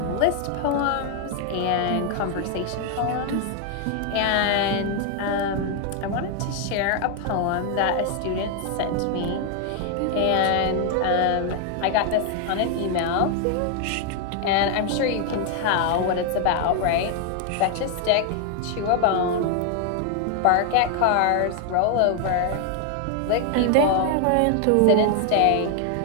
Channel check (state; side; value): different; both; correlation 0.00